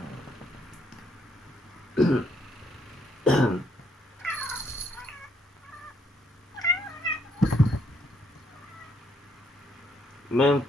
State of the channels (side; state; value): both; normal; correlation 0.71